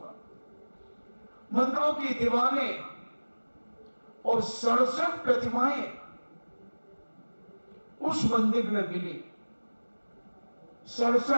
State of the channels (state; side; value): inverted; both; correlation -1.00